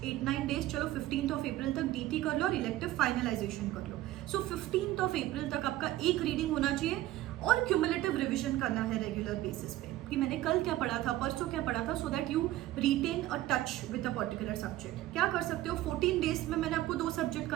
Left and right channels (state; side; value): quieter; left; 15.4 dB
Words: 8-9 days, चलो 15th of April तक DT कर लो और इलेक्टिव फाइनलाइजेशन कर लो। सो 15th of April तक आपका एक रीडिंग होना चाहिए और क्यूमुलेटिव रिविजन करना है रेगुलर बेसिस पे कि मैंने कल क्या पढ़ा था, परसों क्या पढ़ा था, so that you retain a touch with a particular subject. क्या कर सकते हो, 14 days में मैंने आपको 2 सब्जेक्ट